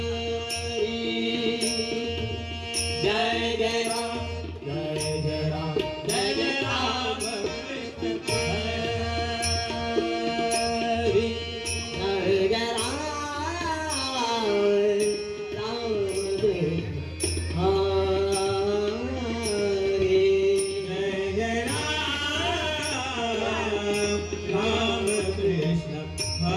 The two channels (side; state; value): both; identical; correlation 1.00